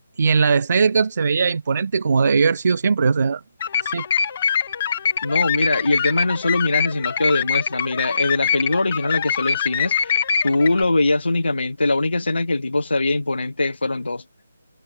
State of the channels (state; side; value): inverted; both; correlation -0.82